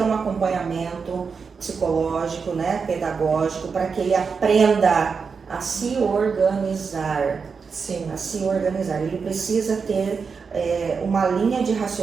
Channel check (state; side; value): quieter; left; 5.5 dB